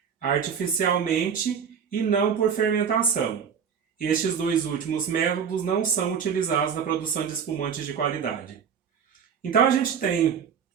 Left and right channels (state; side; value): quieter; left; 7.2 dB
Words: artificialmente e não por fermentação. Estes dois últimos métodos não são utilizados na produção de espumantes de qualidade. Então a gente tem